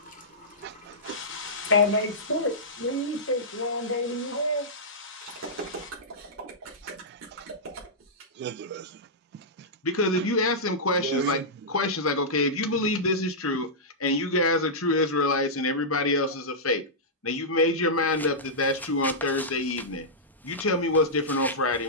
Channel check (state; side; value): normal; both; correlation -0.13